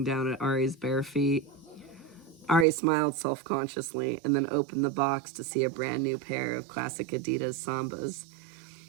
down at Ari's bare feet. Ari smiled self-consciously and then opened the box to see a brand new pair of classic Adidas Sambas.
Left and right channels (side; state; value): left; drops out; at 2.7 s